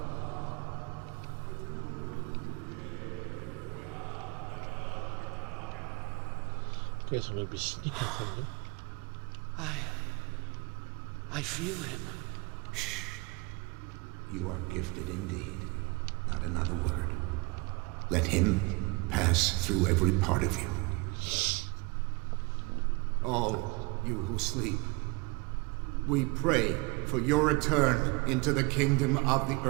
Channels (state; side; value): quieter; left; 27.0 dB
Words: Guess I'm going to be sneaking from them. I feel him. You are gifted indeed. Not another word. Let him pass through every part of you. All you who sleep, we pray for your return into the kingdom of the